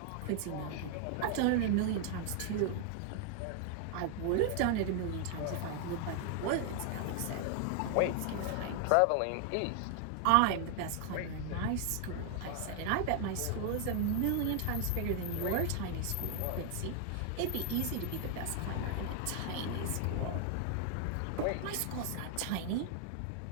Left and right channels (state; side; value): different; both; correlation 0.00